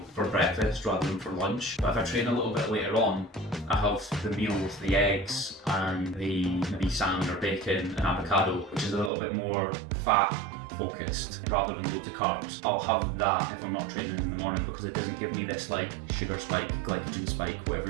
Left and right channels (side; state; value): left; drops out; at 9.1 s